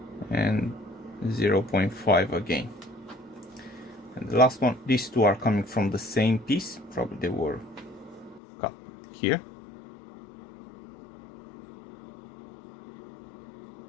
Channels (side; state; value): right; drops out; at 8.4 s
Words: And 0.5 again. And the last one, these two are coming from the same piece, probably they were cut here.